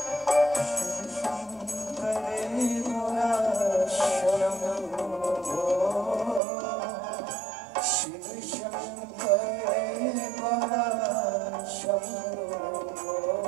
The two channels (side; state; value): left; drops out; at 6.4 s